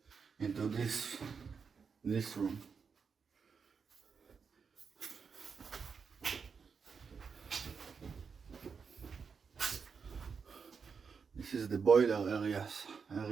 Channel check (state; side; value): quieter; left; 5.8 dB